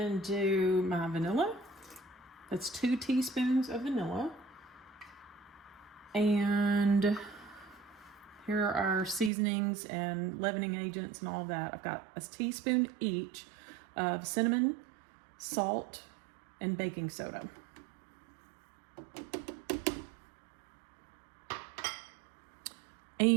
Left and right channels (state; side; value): drops out; left; at 9.3 s